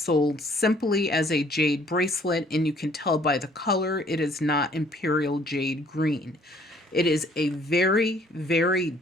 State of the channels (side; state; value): both; normal; correlation 0.60